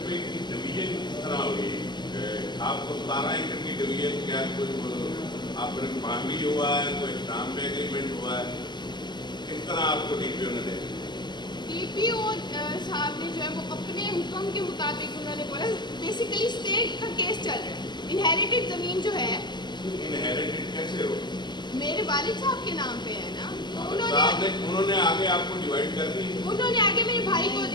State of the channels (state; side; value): late; right; 0.21 ms